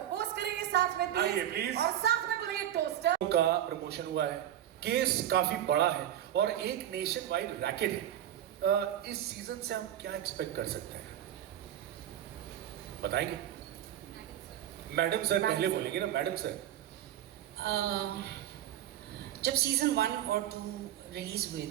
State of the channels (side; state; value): left; quieter; 11.6 dB